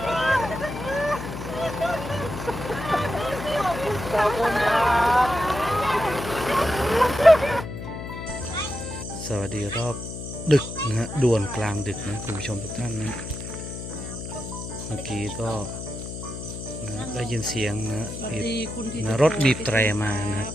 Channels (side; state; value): left; noise; hum, 8 dB below the sound